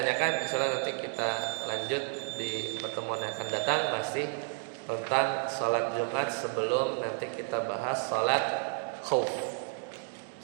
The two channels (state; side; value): silent; left; digital silence